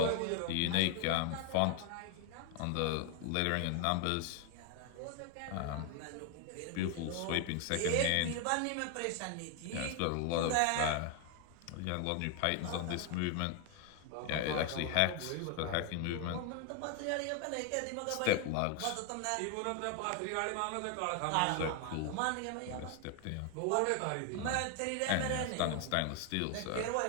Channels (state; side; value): different; both; correlation 0.00